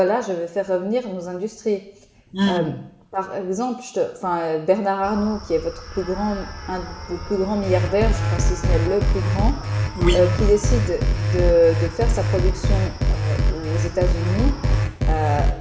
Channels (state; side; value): identical; both; correlation 1.00